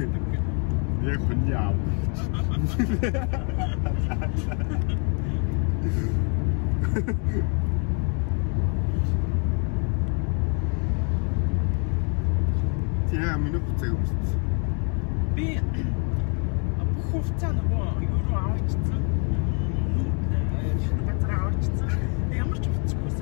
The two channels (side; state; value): right; quieter; 39.1 dB